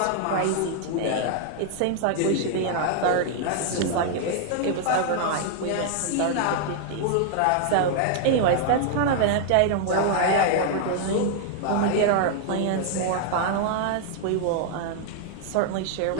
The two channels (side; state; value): both; different; correlation 0.00